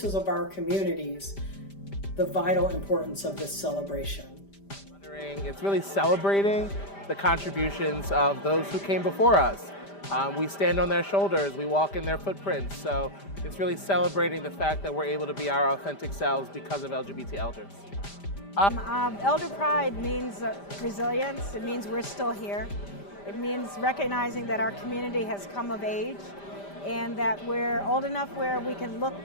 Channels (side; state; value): right; late; 5.0 ms